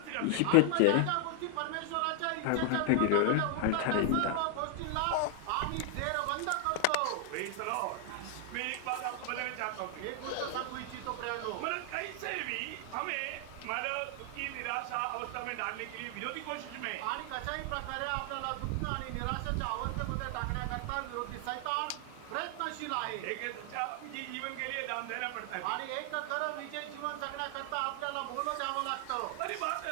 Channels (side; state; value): both; different; correlation 0.00